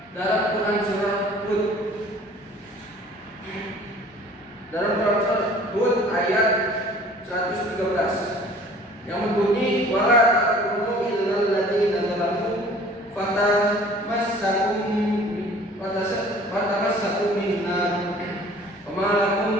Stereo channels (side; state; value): both; normal; correlation 0.50